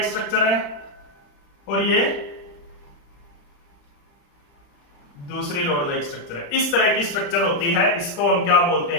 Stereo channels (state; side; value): late; right; 35 ms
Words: स्ट्रक्चर है और ये दूसरी रोड लाइक स्ट्रक्चर है। इस तरह की स्ट्रक्चर होती है, इसको हम क्या बोलते